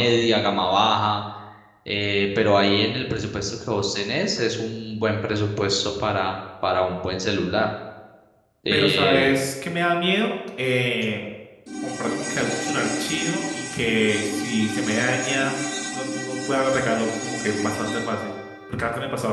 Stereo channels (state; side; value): identical; both; correlation 1.00